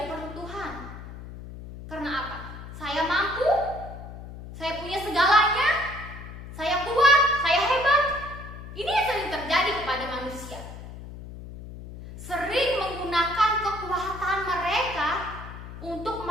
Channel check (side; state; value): left; noise; hum, 12 dB below the sound